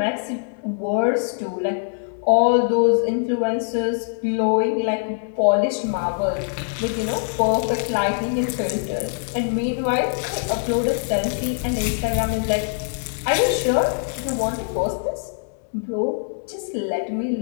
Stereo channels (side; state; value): right; silent; 64 dB below the other